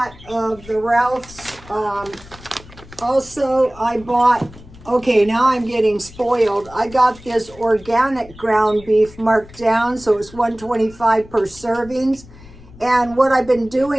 of the Ralph's. Also, I bought, okay, now I'm getting spoiled. I got this organic ground beef marked down, so it's $1.25 per servings. And what I've been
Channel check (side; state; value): left; noise; rumble, 20 dB below the sound